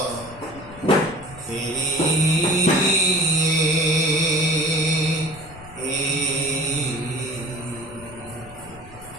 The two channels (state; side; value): noise; left; rumble, 19 dB below the sound